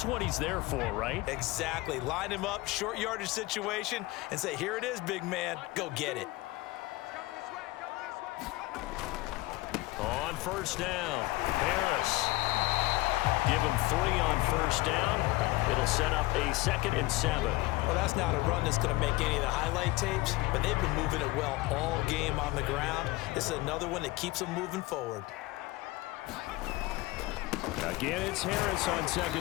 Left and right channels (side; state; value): right; quieter; 20.1 dB